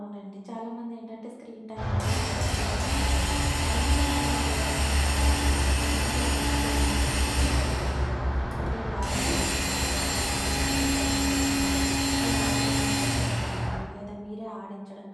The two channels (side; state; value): both; identical; correlation 1.00